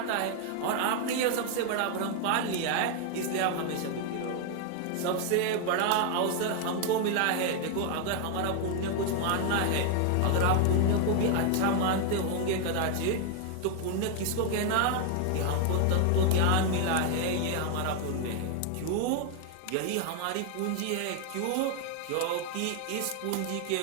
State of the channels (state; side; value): different; both; correlation 0.00